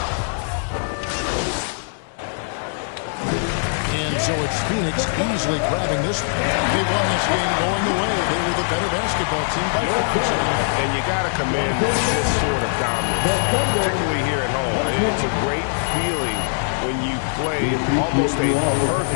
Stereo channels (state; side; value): silent; right; digital silence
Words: And so it's Phoenix easily grabbing this one. They won this game going away. They were the better basketball team by far tonight. And you got to commend this sort of dominance, particularly here at home. It's a great feeling when you play almost a